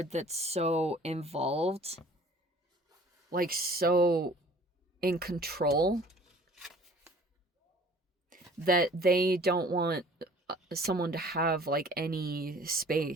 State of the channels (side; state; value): both; normal; correlation 0.50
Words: that's so involved, like so in control, that they don't want someone to have like any